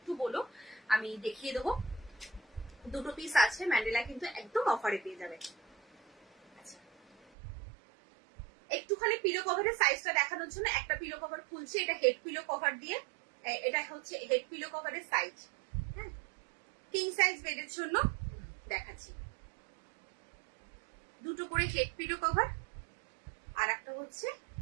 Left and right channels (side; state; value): left; drops out; at 7.2 s